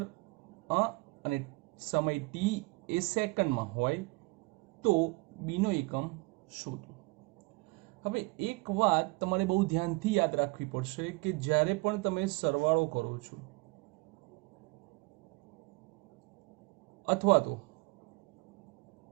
અને સમય t એ સેકન્ડમાં હોય તો b નો એકમ શોધો. હવે એક વાત તમારે બહુ ધ્યાનથી યાદ રાખવી પડશે કે જ્યારે પણ તમે સરવાળો કરો છો અથવા તો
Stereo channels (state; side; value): quieter; left; 26.2 dB